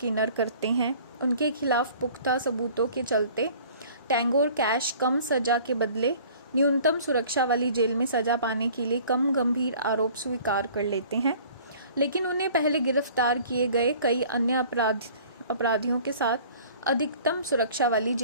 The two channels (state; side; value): inverted; both; correlation -0.49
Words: करते हैं। उनके खिलाफ पुख्ता सबूतों के चलते टैंगो और कैश कम सजा के बदले न्यूनतम सुरक्षा वाली जेल में सजा पाने के लिए कम गंभीर आरोप स्वीकार कर लेते हैं, लेकिन उन्हें पहले गिरफ्तार किए गए कई अन्य अपराधियों के साथ अधिकतम सुरक्षा वाली